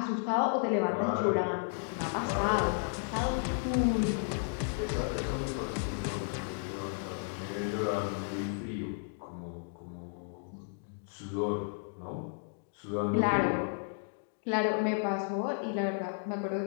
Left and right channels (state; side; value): silent; right; digital silence